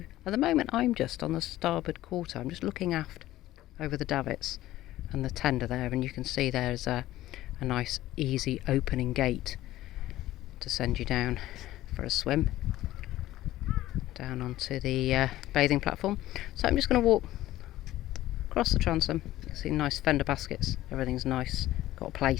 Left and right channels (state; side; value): quieter; right; 15.1 dB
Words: at the moment I'm just on the starboard quarter. I'm just looking aft over the davits and the tender there, and you can see there's a nice easy opening gate to send you down for a swim down onto the bathing platform. So I'm just going to walk across the transom. You can see nice fender baskets, everything's nice, got a